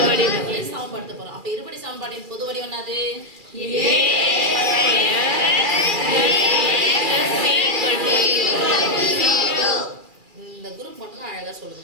வடிவத்தை சமப்படுத்த போறோம். அப்ப இருபடி சமன்பாட்டின் பொது வடிவம் என்னது? இந்த குரூப் மட்டும் ஏதாவது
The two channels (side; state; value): left; late; 2.4 ms